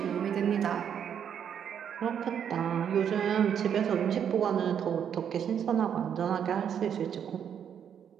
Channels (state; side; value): quieter; left; 8.5 dB